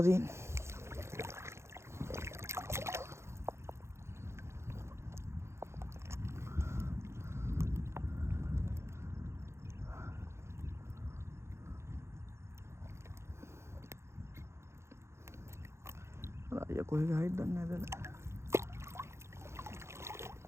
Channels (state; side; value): late; left; 0.13 ms